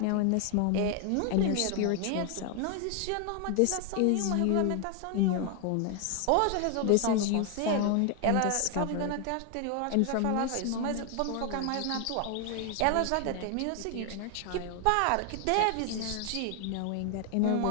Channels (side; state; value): both; different; correlation 0.00